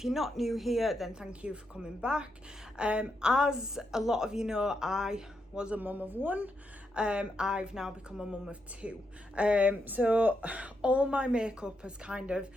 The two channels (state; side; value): normal; both; correlation 0.82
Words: you're not new here, then thank you for coming back. As a lot of you know, I was a mum of one. I've now become a mum of two. So all my makeup has kind of